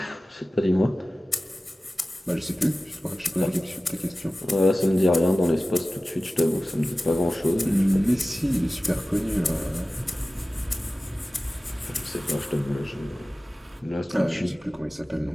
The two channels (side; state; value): both; normal; correlation 0.96